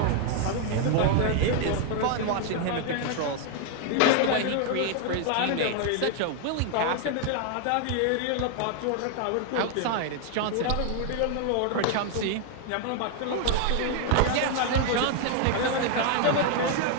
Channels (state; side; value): different; both; correlation 0.00